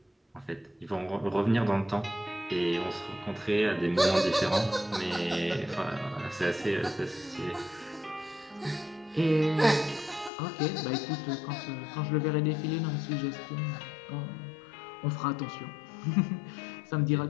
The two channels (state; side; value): drops out; right; at 10.3 s